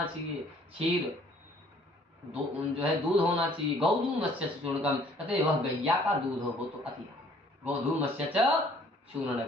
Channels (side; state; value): both; normal; correlation 0.58